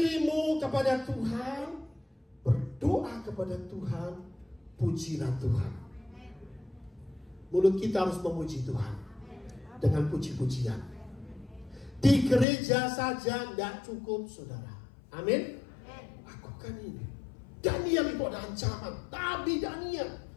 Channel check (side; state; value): right; drops out; at 12.5 s